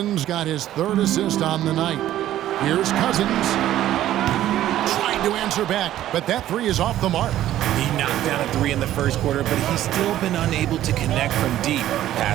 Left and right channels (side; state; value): left; quieter; 13.0 dB